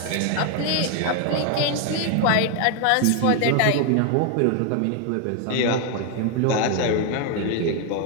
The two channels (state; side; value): different; both; correlation 0.01